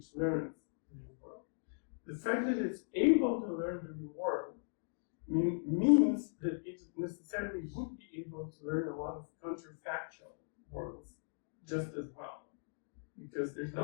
learns the real world. The fact that it's able to learn the real world means that it necessarily would be able to learn a lot of counterfactual worlds just as well, because there's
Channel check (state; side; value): silent; right; digital silence